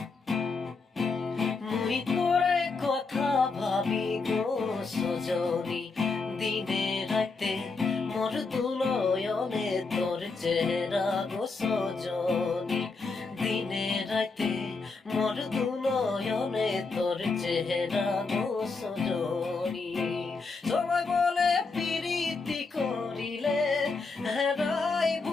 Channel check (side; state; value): right; quieter; 4.2 dB